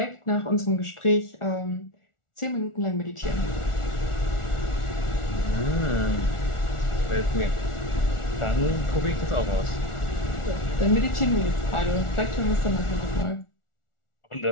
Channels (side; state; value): right; late; 1.4 ms